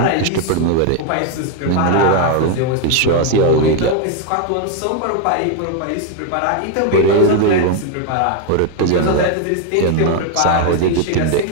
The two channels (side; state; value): both; different; correlation 0.00